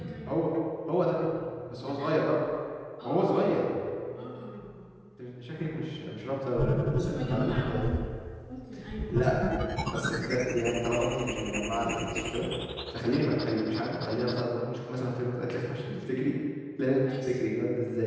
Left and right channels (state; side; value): identical; both; correlation 1.00